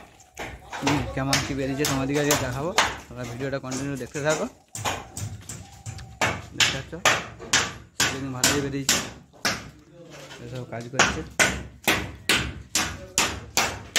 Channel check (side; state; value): both; identical; correlation 1.00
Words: কেমন কী বেরিয়েছে তোমাদেরকে আজকে দেখাবো। তোমরা ভিডিওটা কন্টিনিউ দেখতে থাকো। দেখতে পাচ্ছ সিলিং ভালোই বেরিয়েছে, এসব কাজ করছে।